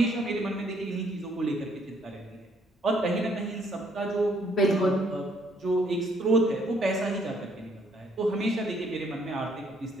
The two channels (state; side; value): normal; both; correlation 0.67